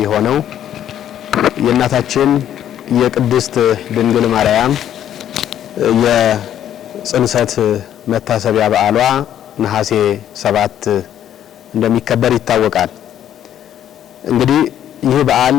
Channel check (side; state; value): right; quieter; 10.7 dB